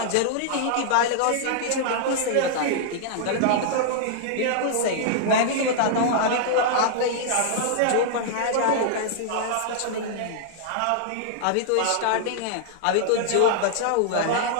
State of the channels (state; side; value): different; both; correlation -0.01